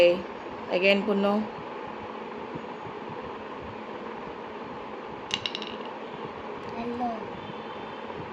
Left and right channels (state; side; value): identical; both; correlation 1.00